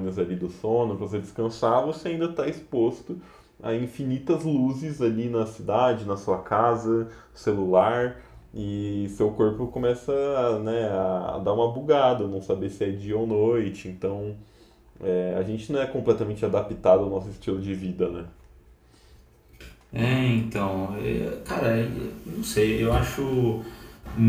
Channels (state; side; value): identical; both; correlation 1.00